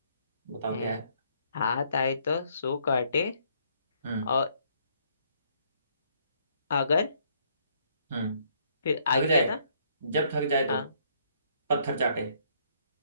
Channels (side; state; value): both; inverted; correlation -0.68